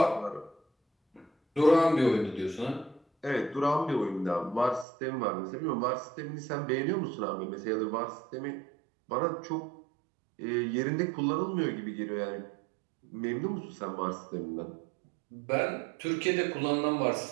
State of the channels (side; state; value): left; drops out; at 4.9 s